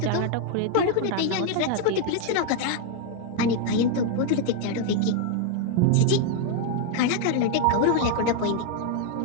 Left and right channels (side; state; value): both; different; correlation 0.00